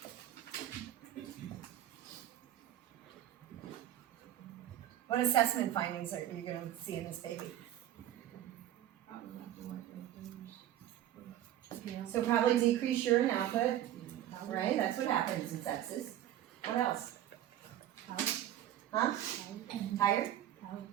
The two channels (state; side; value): quieter; left; 12.2 dB